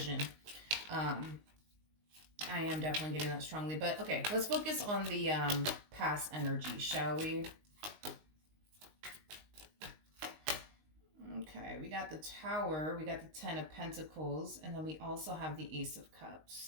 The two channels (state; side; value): late; left; 19 ms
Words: I am definitely getting that strongly. But okay, let's focus on the past energy, shall we? Okay, we got the Tower, we got the Ten of Pentacles, and then we also have the Ace of